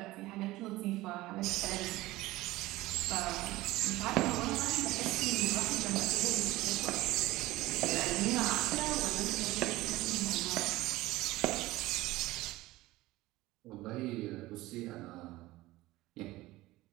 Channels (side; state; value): left; quieter; 18.3 dB